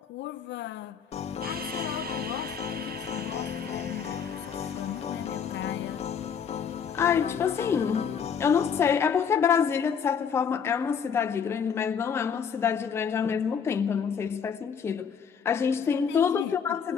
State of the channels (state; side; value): quieter; right; 7.0 dB